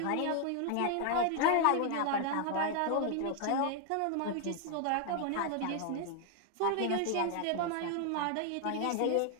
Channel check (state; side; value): different; both; correlation 0.00